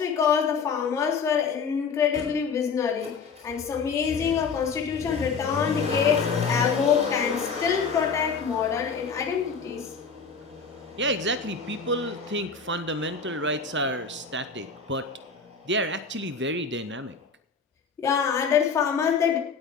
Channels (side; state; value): right; quieter; 5.4 dB